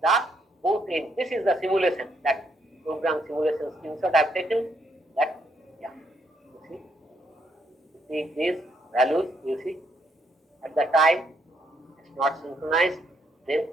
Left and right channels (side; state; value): both; normal; correlation 0.74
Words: the both ends. This is the simulation, that program simulation screenshot I have taken. That, yeah, you see these values, you see at the time it's not synchronized, then